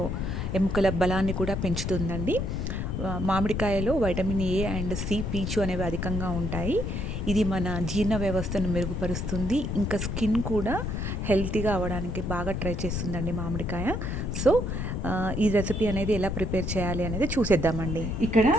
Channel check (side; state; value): left; noise; rumble, 2 dB below the sound